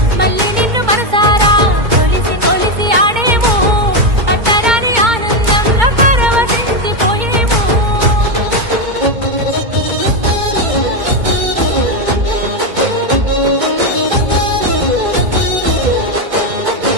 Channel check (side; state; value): left; late; 2.2 ms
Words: మళ్ళీ నిన్ను మనసారా కొలిసి కొలిసి ఆడేము పట్టరాని ఆనందంలో పరవశించిపోయేము